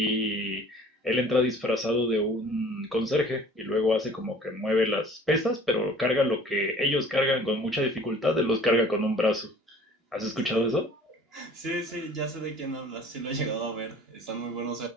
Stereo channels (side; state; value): both; normal; correlation 0.49